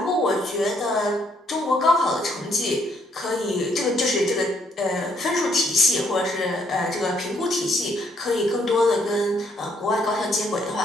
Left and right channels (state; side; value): normal; both; correlation 0.70